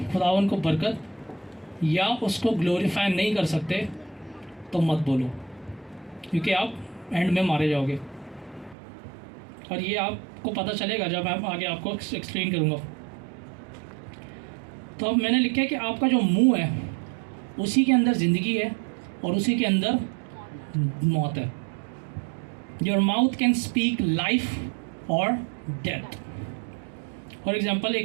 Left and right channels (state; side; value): drops out; left; at 8.8 s